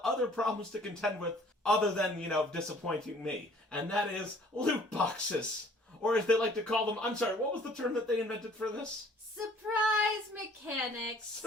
other problems to contend with other than, disappointing me. And that is loot boxes. Or as they like to call them, I'm sorry, what was the term that they invented for this? Surprise mechanics.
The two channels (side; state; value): both; normal; correlation 0.56